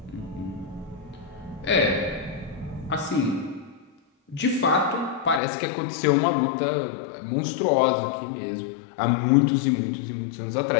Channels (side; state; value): right; drops out; at 5.4 s